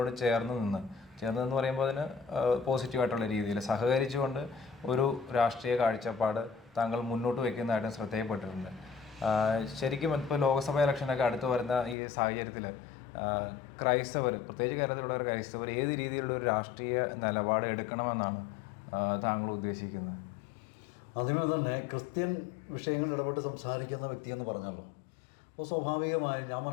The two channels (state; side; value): drops out; right; at 12.0 s